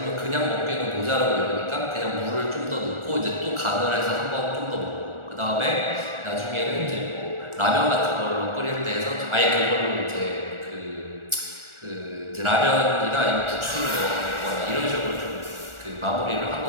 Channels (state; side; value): late; left; 1.4 ms